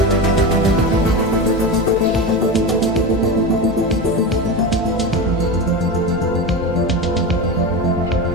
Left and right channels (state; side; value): normal; both; correlation 0.22